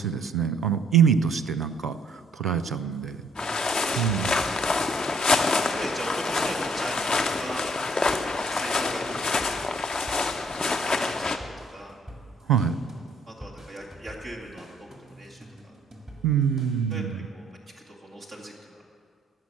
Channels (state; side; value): normal; both; correlation 0.64